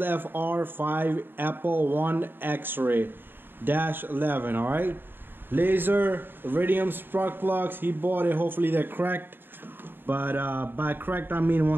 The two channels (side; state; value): left; late; 0.097 ms